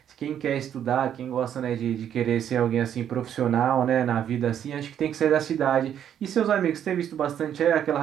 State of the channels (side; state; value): left; quieter; 9.6 dB